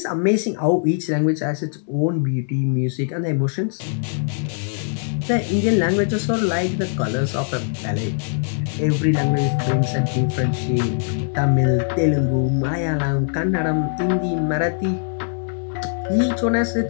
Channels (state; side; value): silent; right; 64 dB below the other